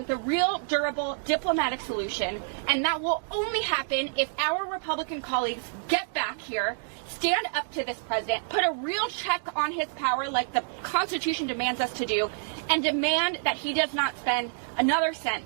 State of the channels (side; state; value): left; silent; digital silence